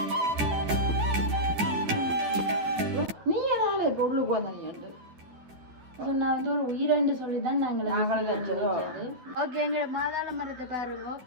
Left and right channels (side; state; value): left; late; 12 ms